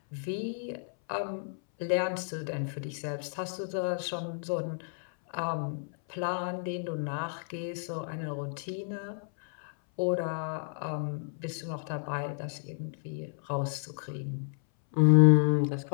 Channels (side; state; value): right; silent; 57 dB below the other